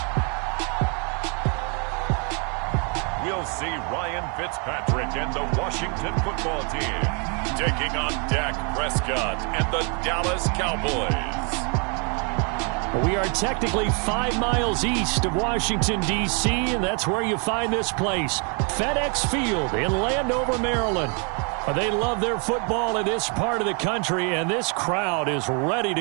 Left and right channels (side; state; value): left; quieter; 36.5 dB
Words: We'll see Ryan Fitzpatrick and the Washington football team taking on Dak Prescott and the Dallas Cowboys. We are technically 5 miles east of Washington, D.C., and that's where you find this place, FedEx Field in Landover, Maryland. They love their football in this part of the country, and this crowd is ready